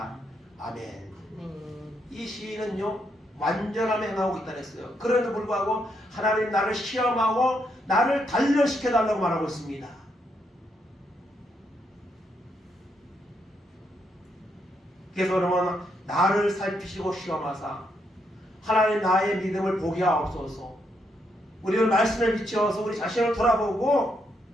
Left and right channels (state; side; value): normal; both; correlation 0.78